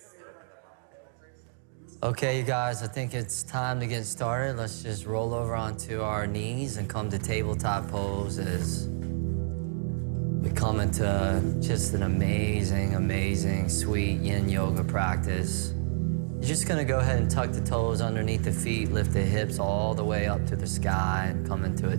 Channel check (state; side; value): silent; left; digital silence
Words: Okay, you guys, I think it's time to get started. Let's just roll over onto our knees and come to tabletop poses. We come into just an amazing, amazing, sweet yin yoga practice. You're just gonna go ahead and tuck the toes underneath the feet, lift the hips all the way up to the sky and come into a